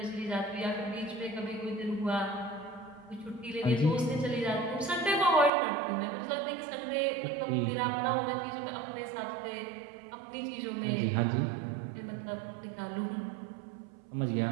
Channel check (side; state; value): left; drops out; at 5.5 s